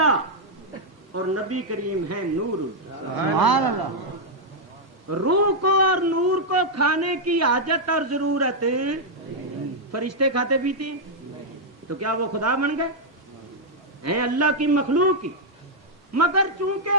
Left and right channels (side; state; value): left; late; 1.1 ms